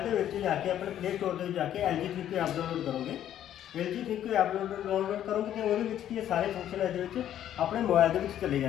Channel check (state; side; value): quieter; right; 11.1 dB